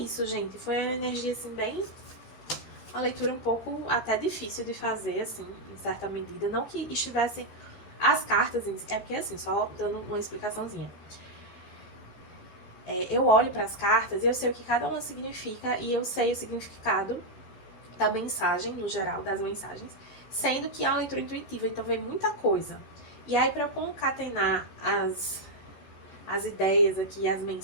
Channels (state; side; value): late; right; 14 ms